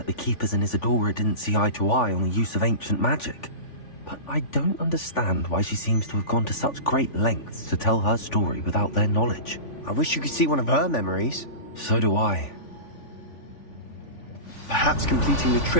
the Keepers and Isadora didn't see eye to eye on the use of ancient magic. But I don't understand why she seems to have gone to such great lengths to tell her story without their knowledge. I wish you could see one of her memories. So do I. Perhaps completing the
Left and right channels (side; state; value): right; late; 3.5 ms